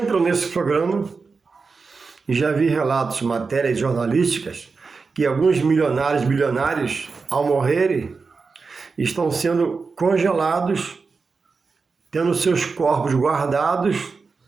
nesse programa, e já vi relatos, matérias jornalísticas, que alguns milionários, bilionários, ao morrerem, estão sendo congelados, tendo seus corpos guardados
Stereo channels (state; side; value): quieter; left; 4.6 dB